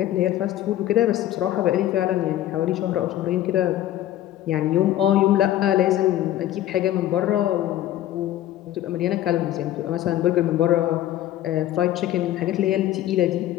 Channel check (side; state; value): right; quieter; 13.2 dB